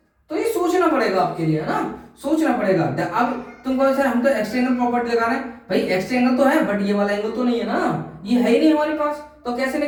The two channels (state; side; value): identical; both; correlation 1.00